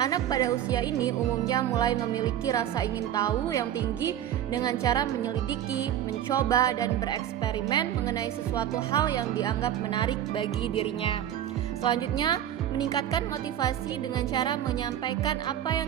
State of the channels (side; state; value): left; quieter; 11.0 dB